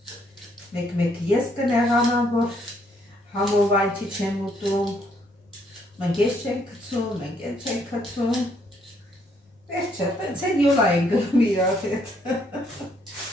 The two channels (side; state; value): both; normal; correlation 0.69